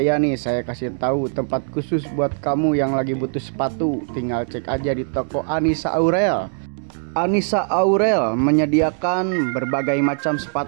nih, saya kasih tahu tempat khusus buat kamu yang lagi butuh sepatu. Tinggal cek aja di toko Anissa Aurel. Anissa Aurel menyediakan berbagai macam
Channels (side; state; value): left; silent; 58 dB below the other